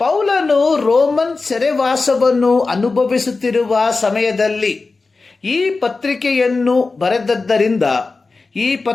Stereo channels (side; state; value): right; quieter; 3.9 dB